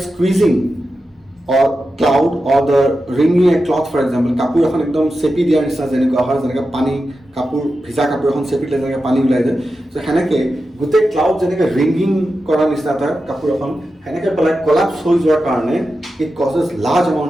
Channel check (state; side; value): normal; both; correlation 0.91